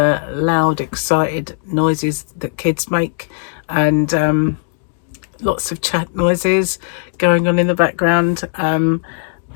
loud, excited noises that kids make, and lots of chat noises going on in the background.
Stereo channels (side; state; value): right; silent; 60 dB below the other